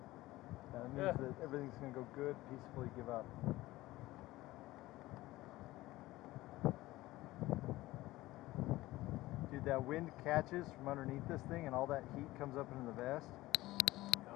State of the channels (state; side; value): quieter; right; 17.8 dB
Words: That means that everything's gonna go good. Peacefully give up. Dude, that wind catches from underneath this thing, and all that heat comes up into the vest.